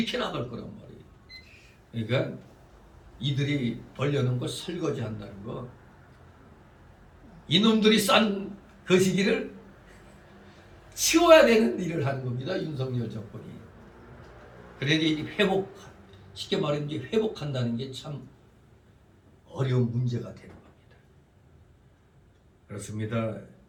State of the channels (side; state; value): both; identical; correlation 1.00